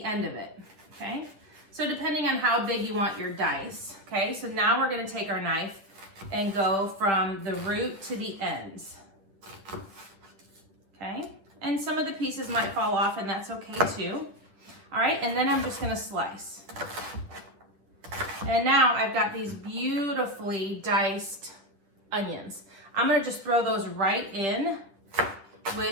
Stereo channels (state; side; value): late; left; 9.9 ms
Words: end of it, okay? So depending on how big you want your dice, okay? So now we're going to take our knife and go from the root to the ends, okay? And some of the pieces might fall off, and that's okay too. All right, and then I'm just going to slice. And now I've got these beautifully diced onions. I'm going to just throw those right in